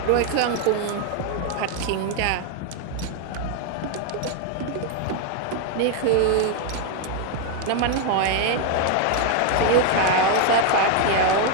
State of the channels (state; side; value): different; both; correlation 0.01